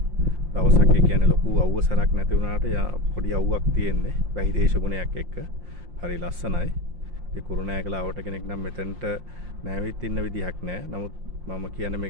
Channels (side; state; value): left; late; 5.7 ms